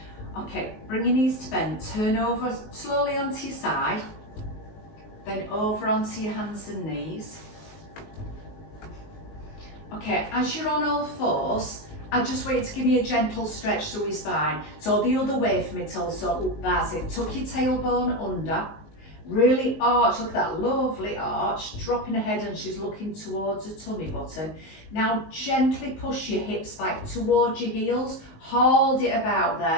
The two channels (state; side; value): late; right; 19 ms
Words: Okay, bring your knees to bend, turn over slowly onto your side, then over onto your hands and knees. Okay, as you're on all fours, I just want you to give me a gentle stretch through your spine. So the other way for me, so that's it. Tuck your tailbone under, really arch, look at that lovely arch, dropping her head and she's looking towards her tummy button. Now gently push your hips back towards your heels, hold it about